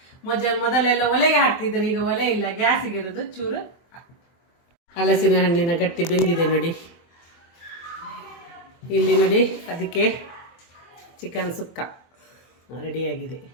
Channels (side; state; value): right; late; 24 ms